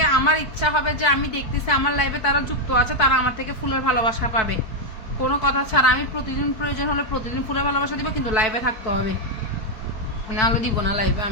আমার ইচ্ছা হবে যে আমি দেখতেছি আমার লাইভে তারা যুক্ত আছে, তারা আমার থেকে ফুলের ভালোবাসা পাবে। কোনো কথা ছাড়া আমি প্রতিদিন প্রয়োজন হলে প্রতিদিন ফুলের ভালোবাসা দিব, কিন্তু লাইভে থাকতে হবে, নাহলে দিব না লাইভে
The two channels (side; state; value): right; late; 4.6 ms